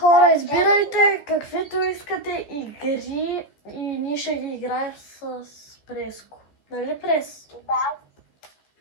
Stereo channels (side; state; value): right; late; 14 ms